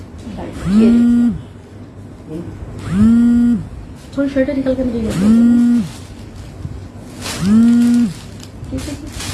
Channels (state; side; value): identical; both; correlation 1.00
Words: थोड़ी शर्ट निकल कर